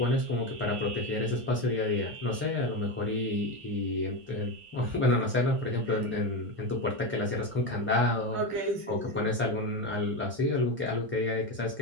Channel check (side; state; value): left; late; 1.5 ms